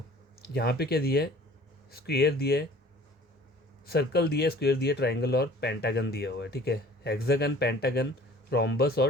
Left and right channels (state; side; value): normal; both; correlation 0.49